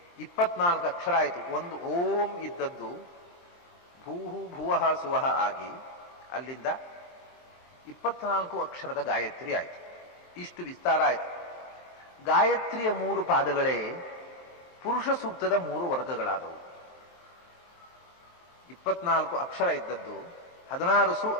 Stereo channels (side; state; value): right; late; 23 ms